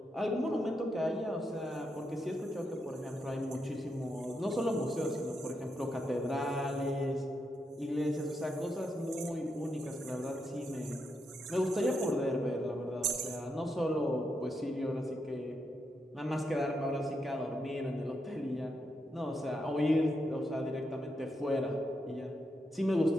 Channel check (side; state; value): both; normal; correlation 0.82